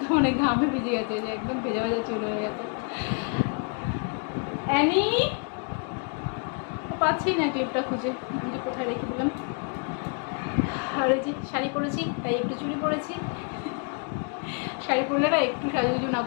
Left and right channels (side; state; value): right; quieter; 37.4 dB